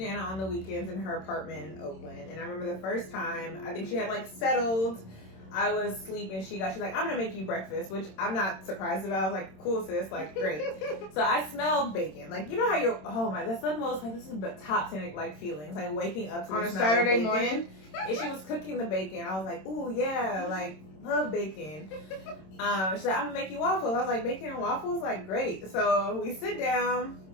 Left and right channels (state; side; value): late; right; 26 ms